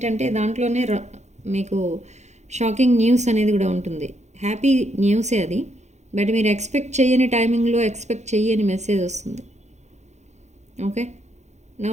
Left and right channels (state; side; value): late; left; 0.33 ms